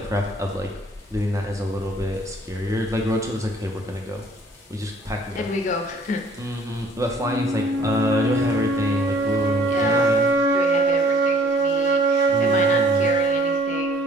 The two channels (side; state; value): both; normal; correlation 0.57